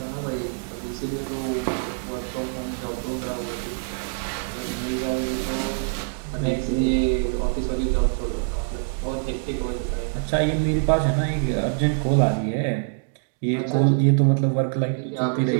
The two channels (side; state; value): left; silent; digital silence